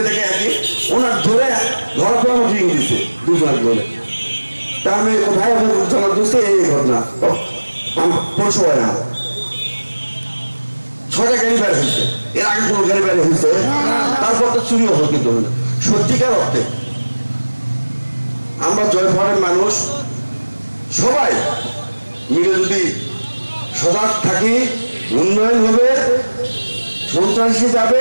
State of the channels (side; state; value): both; inverted; correlation -1.00